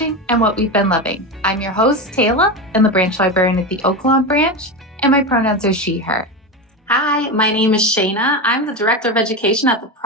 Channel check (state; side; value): normal; both; correlation 0.19